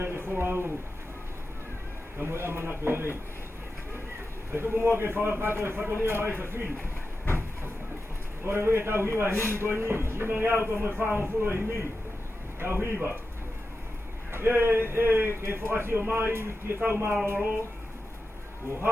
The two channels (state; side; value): normal; both; correlation 0.91